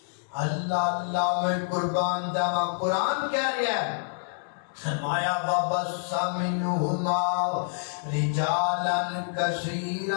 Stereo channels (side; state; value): right; silent; digital silence